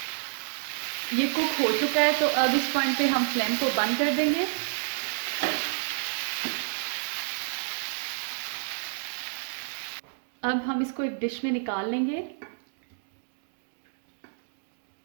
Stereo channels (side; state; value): left; silent; digital silence